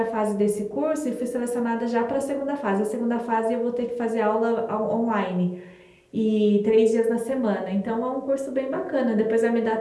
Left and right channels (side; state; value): both; identical; correlation 1.00